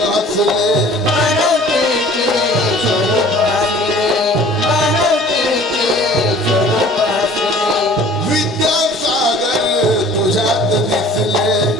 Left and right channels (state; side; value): normal; both; correlation 0.49